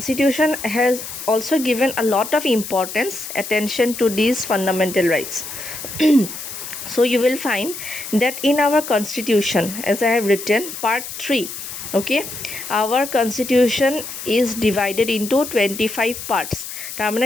has also given a lot of importance, attention to these fundamental rights. So you will find that in our Constitution, as I have written, part 3, okay, our Constitution is divided into 25 parts. তাৰমানে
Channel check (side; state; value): left; noise; hiss, 9 dB below the sound